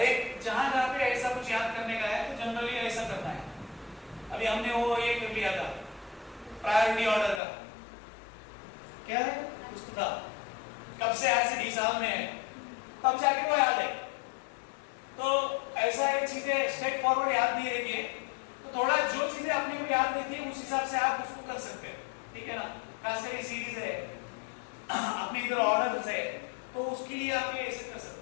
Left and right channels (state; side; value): drops out; right; at 7.4 s